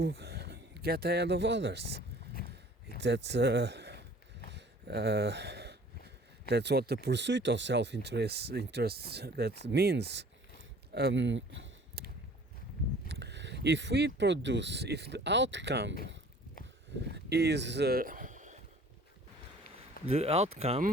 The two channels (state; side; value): normal; both; correlation 0.50